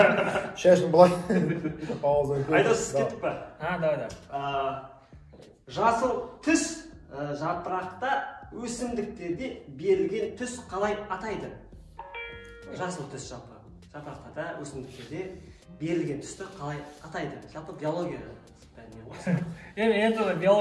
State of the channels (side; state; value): both; identical; correlation 1.00